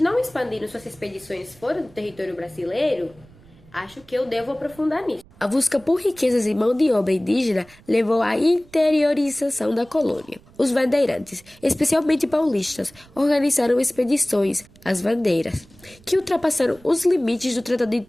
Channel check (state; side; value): noise; right; rumble, 26 dB below the sound